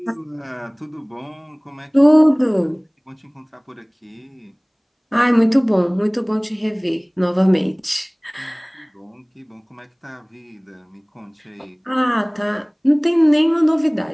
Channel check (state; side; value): identical; both; correlation 1.00